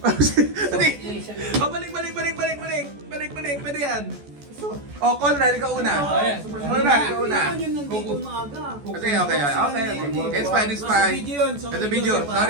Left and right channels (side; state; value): left; late; 14 ms